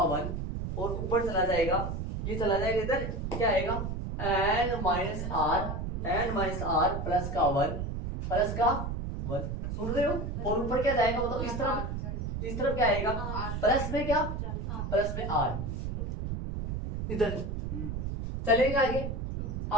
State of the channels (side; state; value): right; noise; rumble, 4 dB below the sound